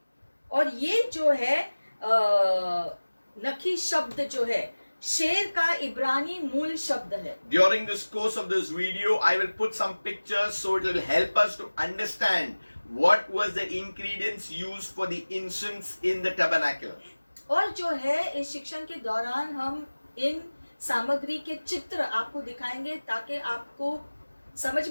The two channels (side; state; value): both; inverted; correlation -1.00